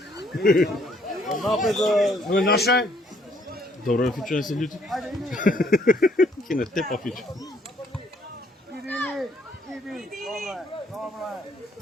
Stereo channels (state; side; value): normal; both; correlation 0.66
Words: Ovo je naše? Dobro je Fičo, ne se ljuti. Kine tepa Fičo.